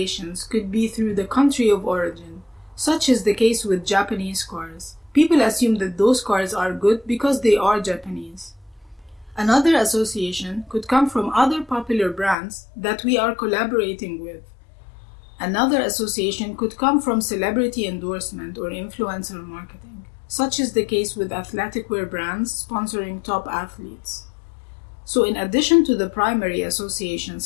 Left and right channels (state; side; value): drops out; right; at 12.4 s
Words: could be through the country of origin, such is the case with Japanese cars. People assume that those cars are good because they are Japanese. Another association could come from other popular brands that we are collaborating with. Another association could come from celebrity endorsement or influencer marketing, such is the case with athletic wear brands sponsoring top athletes. So in addition to the primary